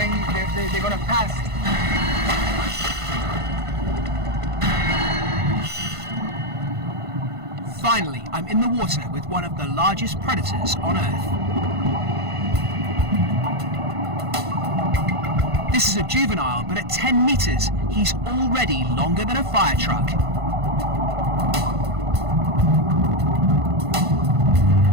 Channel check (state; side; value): late; left; 1.5 ms